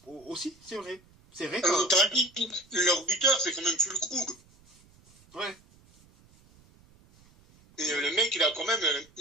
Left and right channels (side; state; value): right; noise; rumble, 29 dB below the sound